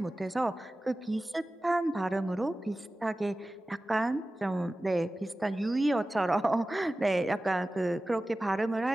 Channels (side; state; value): both; normal; correlation 0.96